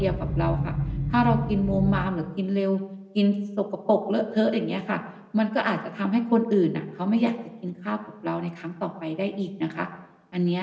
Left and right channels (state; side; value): identical; both; correlation 1.00